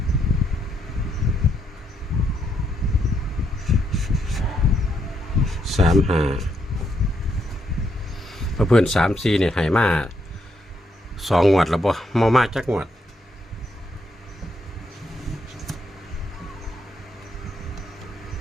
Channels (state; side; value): normal; both; correlation 0.76